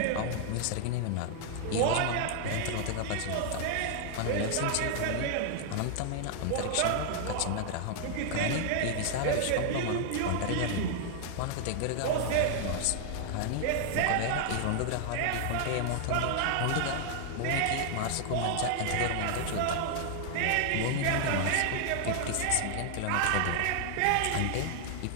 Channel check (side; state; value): both; different; correlation 0.00